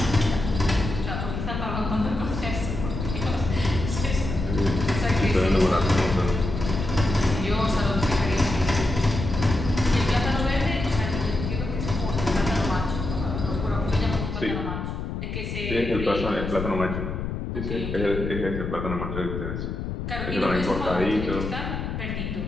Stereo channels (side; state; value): left; noise; rumble, 5 dB below the sound